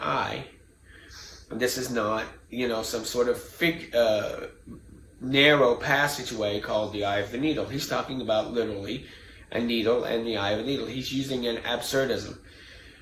eye. And this is not, some sort of narrow passageway called the eye of the needle. He's talking about literally a needle and the eye of a needle. He's using an absurdism.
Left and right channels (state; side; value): identical; both; correlation 1.00